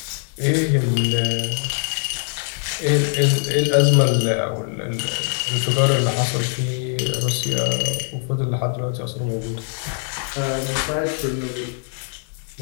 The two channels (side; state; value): right; silent; 62 dB below the other